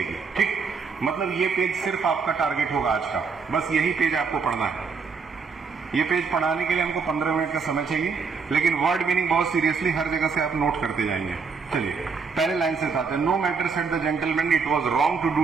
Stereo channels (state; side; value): quieter; left; 5.2 dB